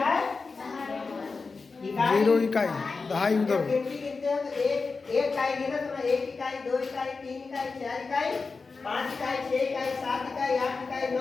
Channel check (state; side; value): quieter; right; 4.3 dB